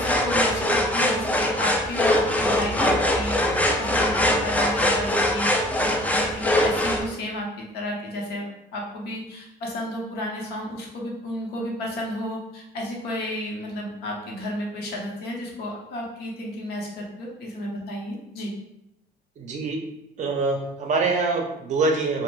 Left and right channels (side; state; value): both; normal; correlation 0.48